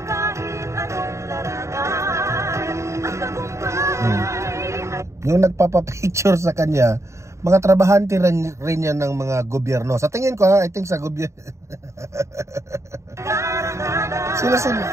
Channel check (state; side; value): late; left; 0.14 ms